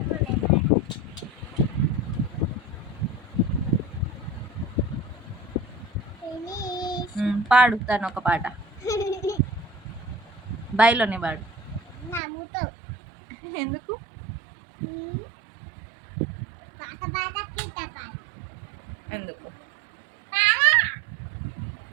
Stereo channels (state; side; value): drops out; left; at 12.2 s